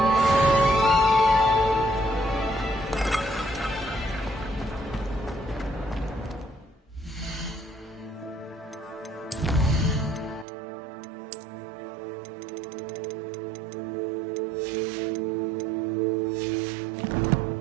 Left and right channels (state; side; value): drops out; left; at 10.5 s